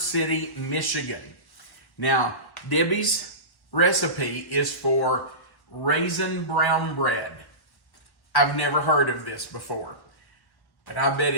Michigan. Now, Debbie's recipe is for raisin brown bread. I've never heard of this before, but I bet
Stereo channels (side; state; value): right; late; 1.4 ms